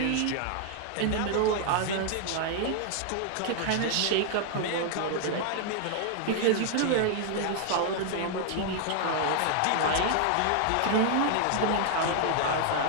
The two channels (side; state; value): both; different; correlation 0.00